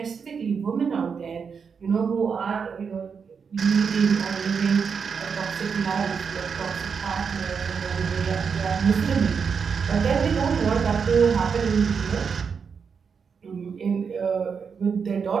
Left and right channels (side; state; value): left; quieter; 6.1 dB